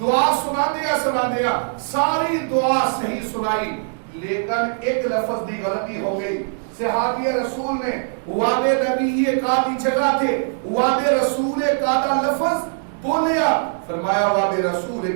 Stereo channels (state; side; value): silent; left; digital silence